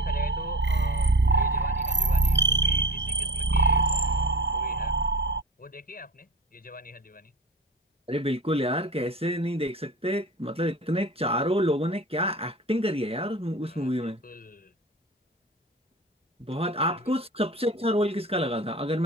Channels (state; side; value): normal; both; correlation 0.36